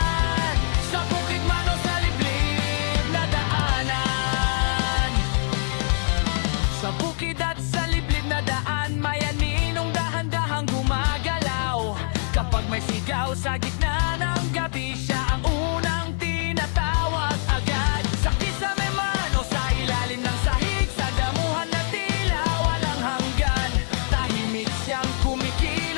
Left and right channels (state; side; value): silent; right; digital silence